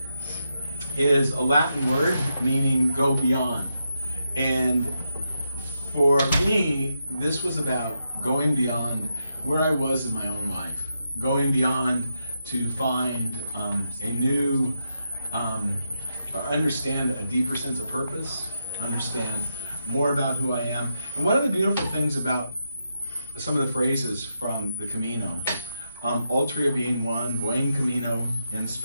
is a Latin word meaning go beyond. And for me, this was about going beyond where I was in my own life, going beyond to find a new, understand a deeper sense of purpose, understand more about who I am. And one of the beautiful things about some of the phrases from the Camino, Altria being one, Buen Camino in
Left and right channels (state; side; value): inverted; both; correlation -0.85